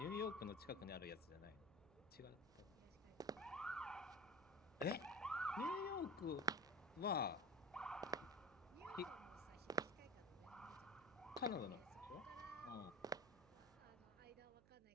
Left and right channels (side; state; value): right; noise; hum, 23 dB below the sound